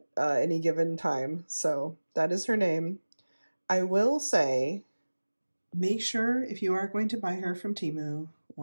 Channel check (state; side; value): inverted; both; correlation -1.00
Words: any given time. So that is her name. I will say, make sure if you are going to buy her from Temu